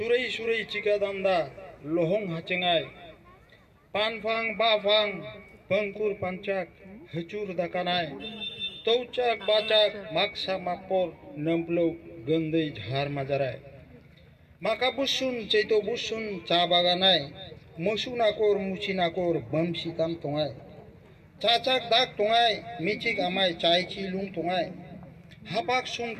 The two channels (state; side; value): identical; both; correlation 1.00